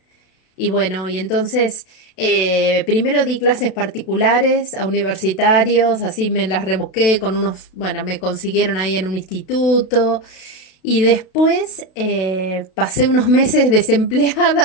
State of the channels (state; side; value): late; right; 32 ms